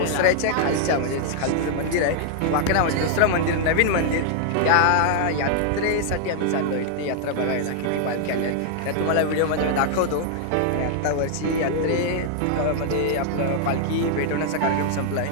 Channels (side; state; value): both; different; correlation -0.01